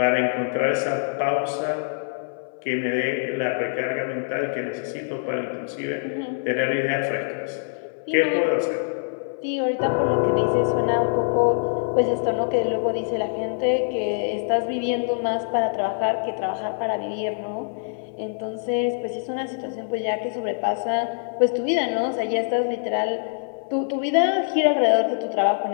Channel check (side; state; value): right; silent; 62 dB below the other